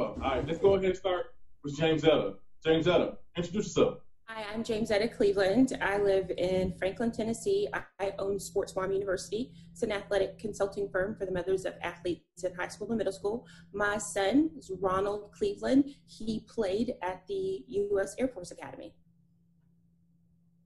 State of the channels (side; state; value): both; identical; correlation 1.00